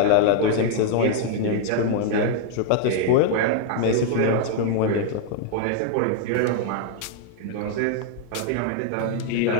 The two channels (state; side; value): different; both; correlation 0.00